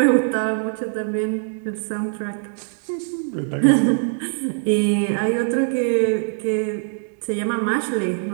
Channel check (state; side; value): silent; left; 64 dB below the other